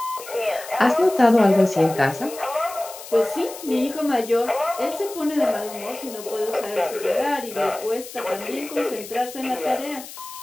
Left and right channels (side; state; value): left; noise; hiss, 14 dB below the sound